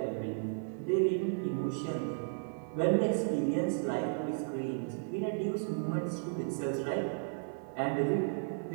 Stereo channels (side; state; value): left; silent; 55 dB below the other